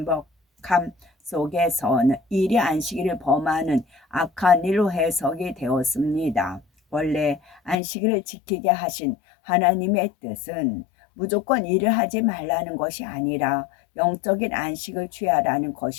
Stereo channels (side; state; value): right; drops out; at 7.8 s